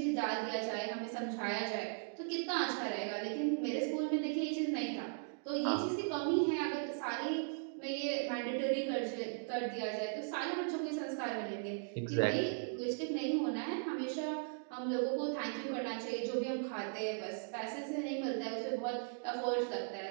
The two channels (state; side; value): silent; left; digital silence